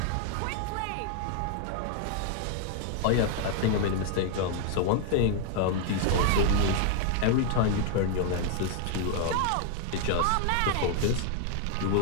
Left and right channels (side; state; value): both; different; correlation 0.00